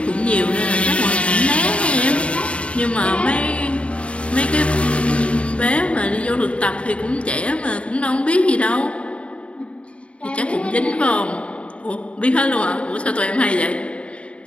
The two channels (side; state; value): right; late; 0.061 ms